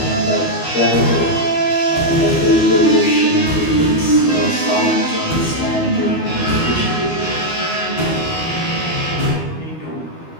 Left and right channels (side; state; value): right; late; 12 ms